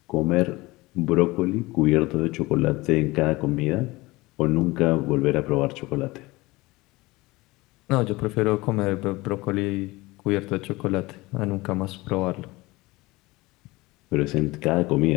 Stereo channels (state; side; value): quieter; right; 21.3 dB